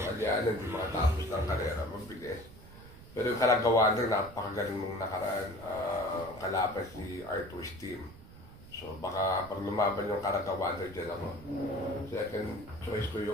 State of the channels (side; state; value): right; noise; rumble, 18 dB below the sound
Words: Aliana hindi makatapos ng karera, mabilis. Pero yung kalagawan rin, napakagaling nung nakaraan, kalaban si Arthur's team. So baka pag lumaban yung kalagawan rin dyan ako. Second choice ko